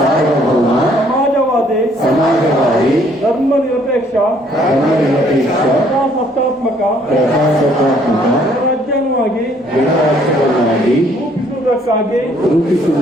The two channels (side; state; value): both; normal; correlation 0.63